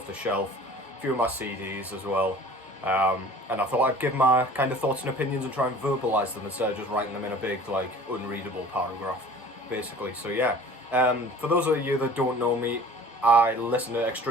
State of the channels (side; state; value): both; normal; correlation 0.46